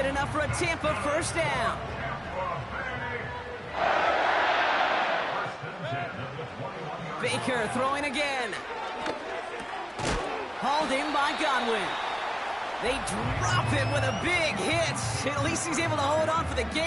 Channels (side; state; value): both; identical; correlation 1.00